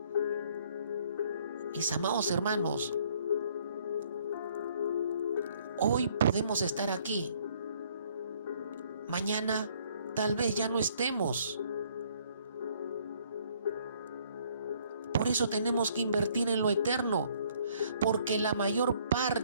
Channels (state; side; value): inverted; both; correlation -0.63